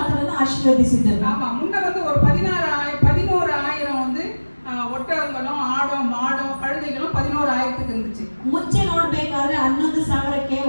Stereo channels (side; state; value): both; inverted; correlation -1.00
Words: ಆಶೀರ್ವದಿಸಿದರು. ஆமா, முன்ன வந்து ஒரு 11,000 வந்து ஒட்டகங்களும் ஆடும் மாடும் கழுதைகளும் 11,000க்கு இருந்துச்சு. ಮುಂಚೆ ನೋಡ್ಬೇಕಾದ್ರೆ 11,000ಕ್ಕೆ